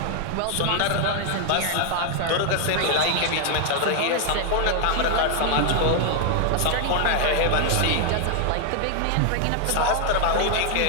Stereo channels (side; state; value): both; different; correlation 0.00